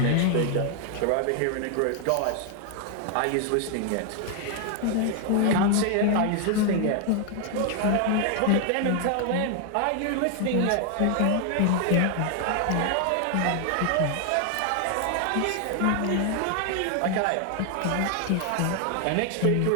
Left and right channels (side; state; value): both; different; correlation 0.00